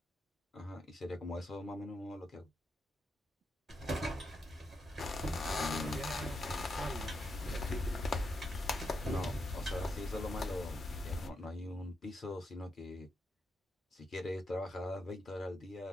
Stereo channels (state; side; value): normal; both; correlation 0.83